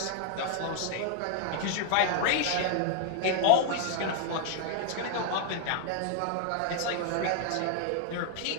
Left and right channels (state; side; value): different; both; correlation 0.00